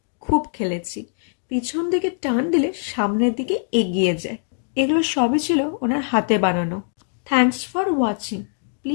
খুব খেলেছি। পিছন দিকে টান দিলে সামনের দিকে এগিয়ে যায়। এগুলো সবই ছিল ওনার হাতে বানানো। Thanks for watching,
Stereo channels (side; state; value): right; silent; digital silence